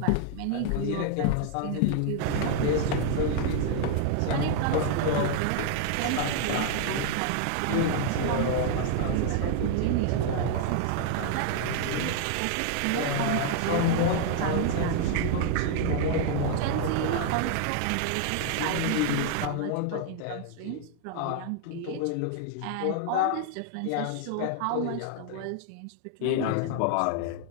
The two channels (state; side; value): different; both; correlation 0.00